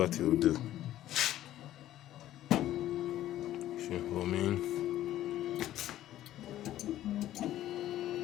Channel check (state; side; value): quieter; right; 13.4 dB